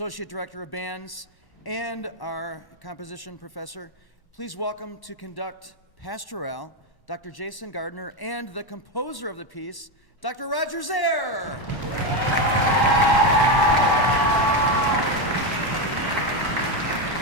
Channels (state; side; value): late; right; 1.1 ms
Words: director of bands and our composition professor. Please welcome to conduct Pastorale, Dr. Jason Gardner, and the composer of the piece, Dr. Roger Zare.